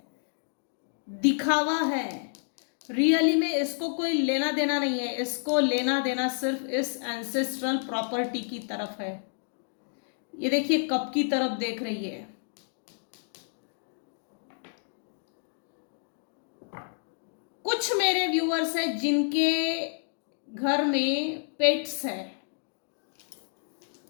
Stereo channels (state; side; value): silent; right; 58 dB below the other